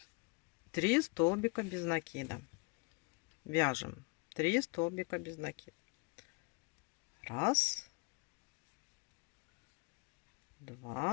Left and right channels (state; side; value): quieter; right; 30.1 dB